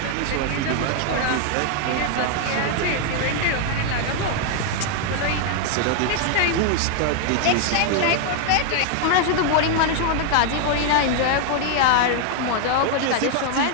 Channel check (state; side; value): different; both; correlation 0.00